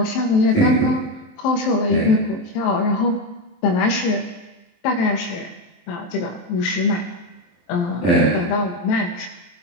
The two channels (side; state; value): right; late; 23 ms